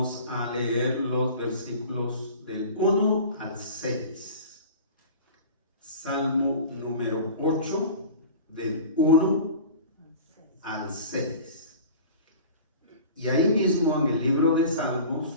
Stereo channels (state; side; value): inverted; both; correlation -0.39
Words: a leer los versículos del 1 al 6. Salmo número 8, del 1 al 6. Y ahí mismo en el libro de